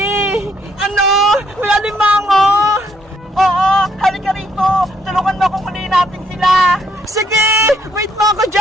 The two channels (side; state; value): both; normal; correlation 0.70